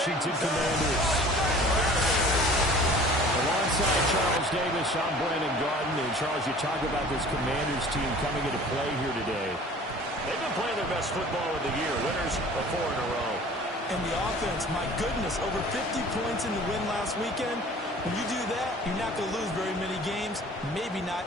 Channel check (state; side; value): normal; both; correlation 0.47